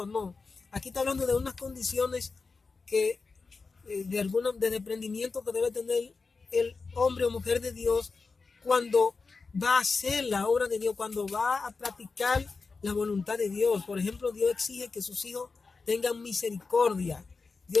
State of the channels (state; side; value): quieter; right; 4.4 dB